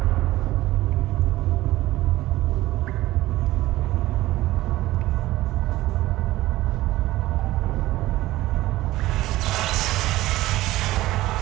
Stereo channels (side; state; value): left; quieter; 16.8 dB